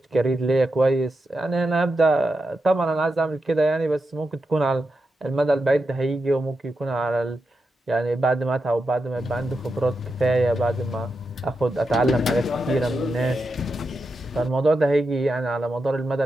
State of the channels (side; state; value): both; normal; correlation 0.87